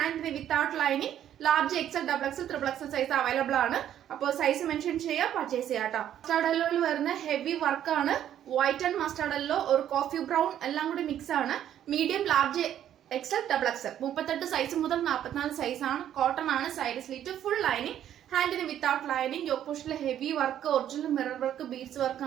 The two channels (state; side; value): quieter; left; 10.8 dB